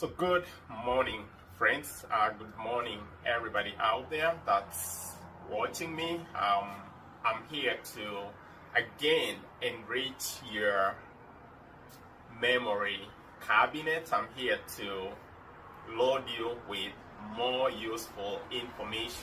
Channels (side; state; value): both; identical; correlation 1.00